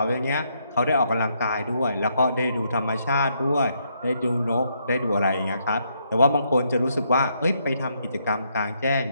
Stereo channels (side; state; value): both; inverted; correlation -0.75